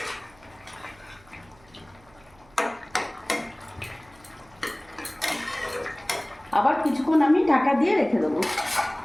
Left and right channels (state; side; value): noise; right; hum, 28 dB below the sound